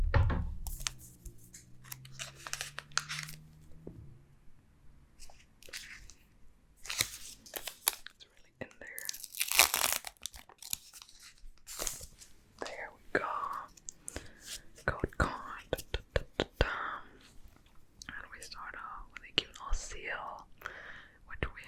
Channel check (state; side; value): identical; both; correlation 1.00